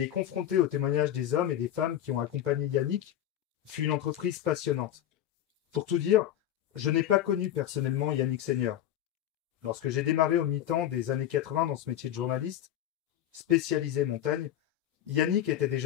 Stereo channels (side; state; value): right; quieter; 11.5 dB